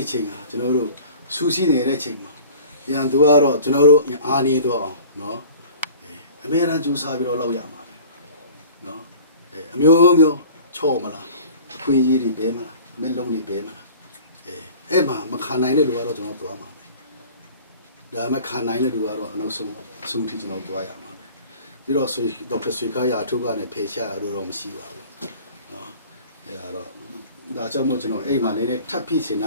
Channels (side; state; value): both; inverted; correlation -0.45